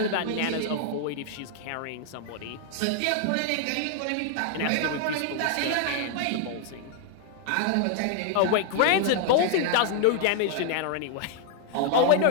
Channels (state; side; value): different; both; correlation 0.00